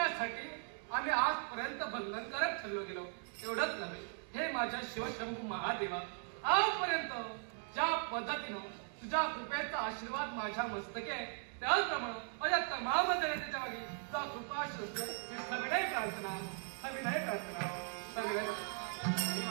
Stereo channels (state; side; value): silent; left; 52 dB below the other